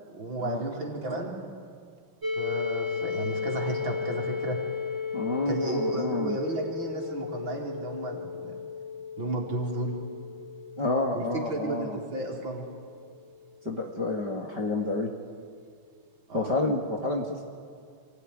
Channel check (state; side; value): late; left; 6.0 ms